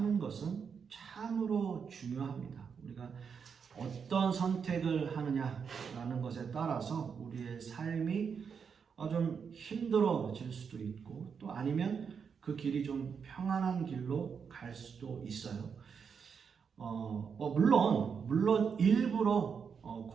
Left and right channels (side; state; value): left; quieter; 6.4 dB